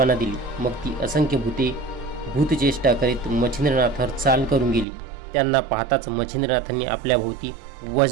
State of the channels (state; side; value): drops out; left; at 4.9 s